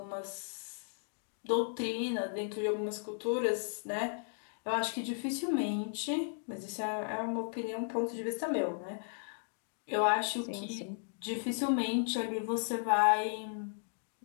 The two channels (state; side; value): silent; right; digital silence